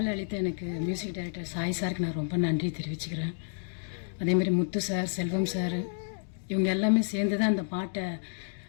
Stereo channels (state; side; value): silent; right; digital silence